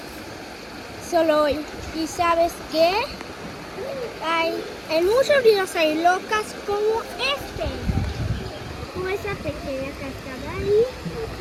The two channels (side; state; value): both; identical; correlation 1.00